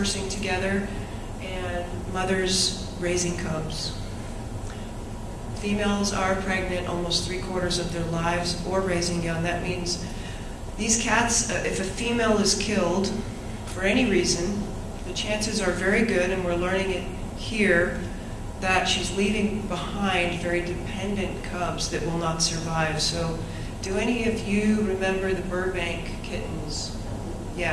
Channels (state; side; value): identical; both; correlation 1.00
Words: together, and mothers raising cubs. Females are pregnant almost 3/4 of their lives or raising young. That means these cats, if a female is killed for any reason, the chances are very good, and we're learning it here, that she's leaving behind very dependent cubs that will not survive. So do any of you remember the Burbank kittens?